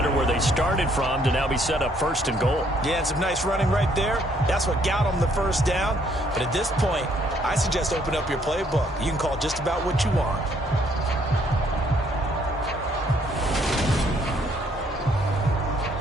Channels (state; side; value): normal; both; correlation 0.67